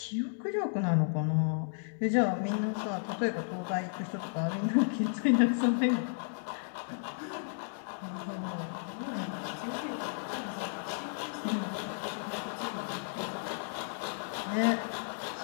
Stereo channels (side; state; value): right; silent; digital silence